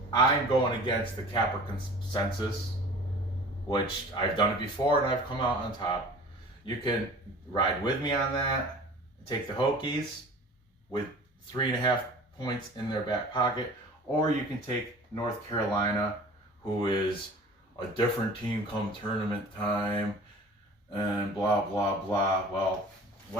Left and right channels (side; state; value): both; normal; correlation 0.43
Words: I'm going against the capper consensus, which I've done it before and I've come out on top. You can ride with me on that, take the Hokies with 3.5 points in their back pocket, or you can take North Carolina, who is a different team come tournament time, and blah, blah, blah. Well,